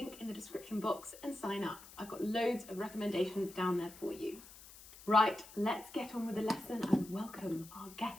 in the description box and sign up. I've got loads of recommendations down there for you. Right, let's get on with the lesson and welcome our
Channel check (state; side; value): noise; left; hiss, 18 dB below the sound